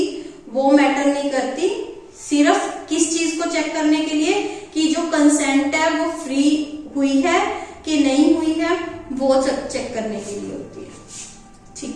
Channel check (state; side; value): identical; both; correlation 1.00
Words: वो मैटर नहीं करती, सिर्फ किस चीज को चेक करने के लिए कि जो कंसेंट है वो फ्री हुई है कि नहीं हुई है, वो चेक करने के लिए होती है।